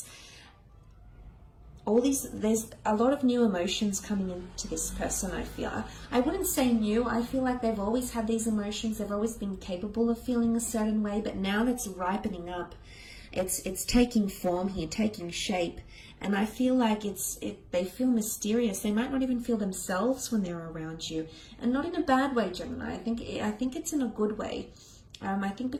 there's a lot of new emotions coming into this person. I feel, I wouldn't say new, I feel like they've always had these emotions, they've always been capable of feeling a certain way, but now that's ripening up. It's taking form here, taking shape, and I feel like they feel mysterious. They might not even feel themselves when they're around you, and not in a bad way, Gemini. I think it's in a good way. I think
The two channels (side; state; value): both; identical; correlation 1.00